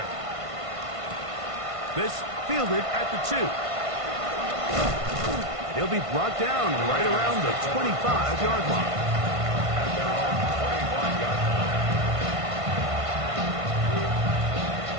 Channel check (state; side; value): late; left; 1.5 ms